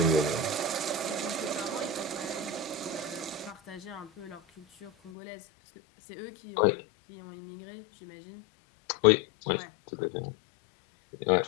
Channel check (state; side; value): drops out; right; at 5.1 s